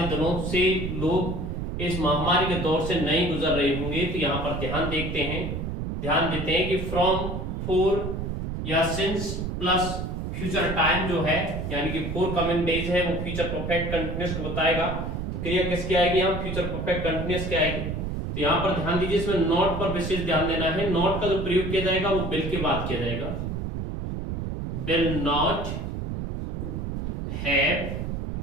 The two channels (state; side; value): noise; right; rumble, 4 dB below the sound